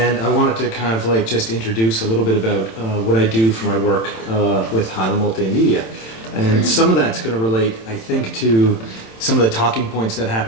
I wanted to kind of like just introduce a little bit about what I do for my work with Highland Multimedia. And some of that's going to relate, I think, to some of the talking points that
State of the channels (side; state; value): right; late; 27 ms